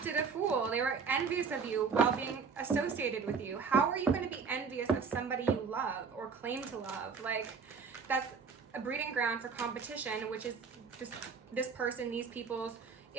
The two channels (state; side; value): quieter; left; 5.6 dB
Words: a fool. They were envious of you while being associated with you. How are you going to be envious of somebody you love or claim to love? Like, that's a breeding ground for competition, which is this person, these people's